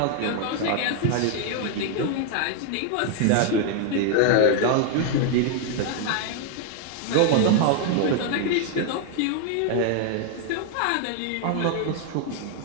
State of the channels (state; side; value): different; both; correlation 0.00